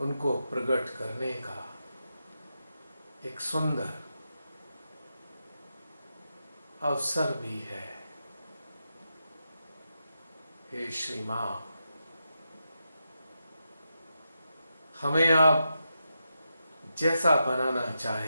उनको प्रकट करने का एक सुंदर अवसर भी है। हे श्री मां, हमें आप जैसा बनाना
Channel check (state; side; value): inverted; both; correlation -0.86